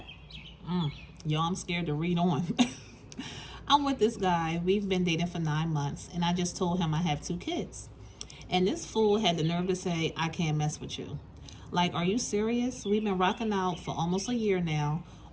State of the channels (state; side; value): identical; both; correlation 1.00